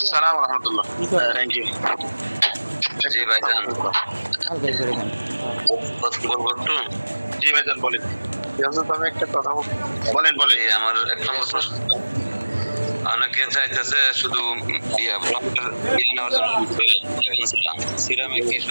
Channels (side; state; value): both; inverted; correlation -1.00